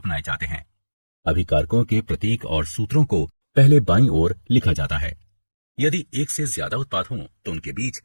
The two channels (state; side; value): inverted; both; correlation -1.00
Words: जाते हैं। अभिकारकों के प्रतीक और सूत्रों को पहले बाईं ओर लिखा जाता है। यदि एक से ज्यादा उत्पाद हों तो उनके बीच